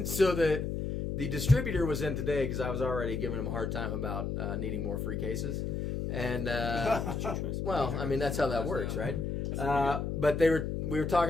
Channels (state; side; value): noise; left; hum, 2 dB below the sound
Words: so the distributor was in today because I was already giving him a hard time about needing more free cases, and well, I mean that's how that works, right? But we were